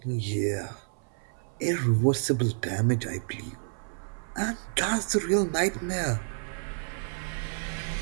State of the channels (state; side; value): silent; left; 58 dB below the other